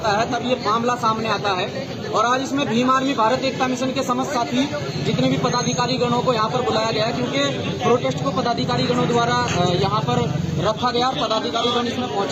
है, तब ये मामला सामने आता है। और आज इसमें भीम आर्मी भारत एकता मिशन के समस्त साथी, जितने भी पदाधिकारी गणों को यहाँ पर बुलाया गया है, क्योंकि प्रोटेस्ट को पदाधिकारी गणों द्वारा यहाँ पर रखा गया। पदाधिकारी गण इसमें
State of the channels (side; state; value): both; identical; correlation 1.00